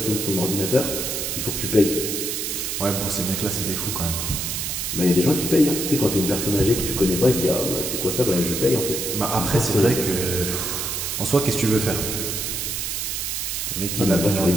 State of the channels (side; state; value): right; noise; hiss, 2 dB below the sound